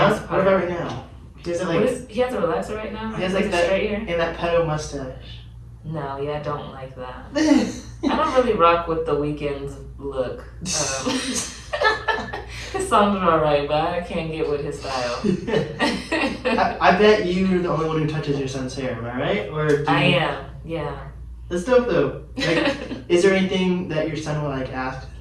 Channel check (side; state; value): both; identical; correlation 1.00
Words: What about right now? He has He has a relaxer right now? He has like that straight hair? and that pedo mustache. No, yeah, I don't like that. I don't really rock with The Weeknd's look. His songs are alright, but I can't get with his style. I bet you're the only one who touches your son's hair, am I right? Or I am, yeah. That's dope though. Like, is there anything that your son will like ask